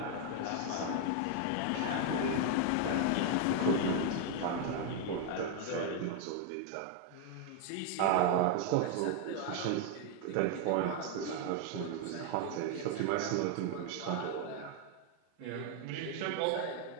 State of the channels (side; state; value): both; different; correlation 0.01